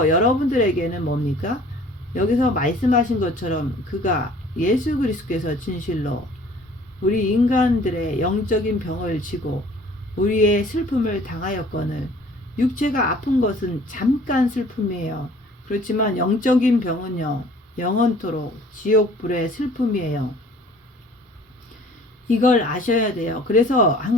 여러분들에게는 뭡니까? 여기서 말씀하신 것처럼 그가 예수 그리스도께서 진실로 우리 인간들의 영적인 병을 지고 우리의 슬픔을 당하였거늘 육체가 아픈 것은 잠깐 슬픔이에요. 그렇지만 영적인 병은요 영원토록 지옥불의 슬픔이에요. 이걸 아셔야 돼요. 그래서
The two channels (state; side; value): normal; both; correlation 0.52